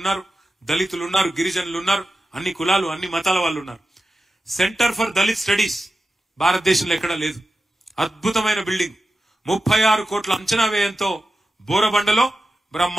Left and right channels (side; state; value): both; normal; correlation 0.92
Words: ఉన్నారు, దళితులు ఉన్నారు, గిరిజనులు ఉన్నారు, అన్ని కులాలు అన్ని మతాల వాళ్ళు ఉన్నారు. సెంటర్ ఫర్ దళిత్ స్టడీస్ భారతదేశంలో ఎక్కడా లేదు. అద్భుతమైన బిల్డింగ్ 36 కోట్ల అంచనా వ్యయంతో బోరబండలో